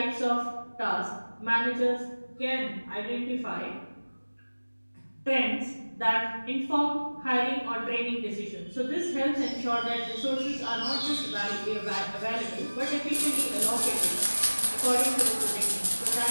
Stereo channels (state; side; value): inverted; both; correlation -1.00